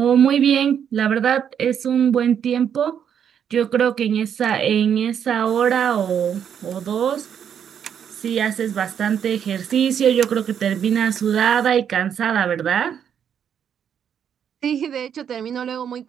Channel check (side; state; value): left; quieter; 8.4 dB